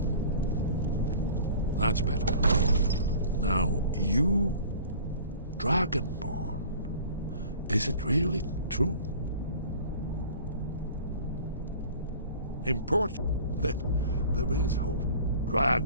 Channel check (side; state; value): both; inverted; correlation -0.45